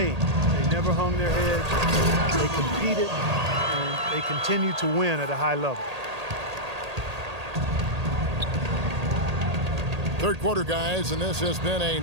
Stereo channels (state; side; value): late; left; 1.8 ms